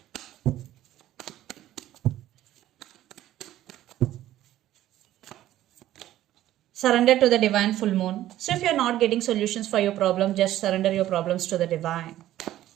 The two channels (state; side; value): quieter; left; 13.6 dB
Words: Surrender to the divine full moon. So if you're not getting solutions for your problem, just surrender your problems to the divine.